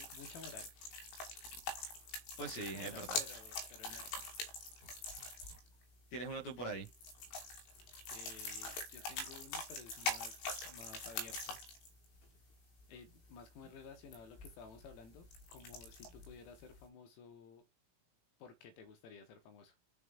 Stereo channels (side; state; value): right; late; 18 ms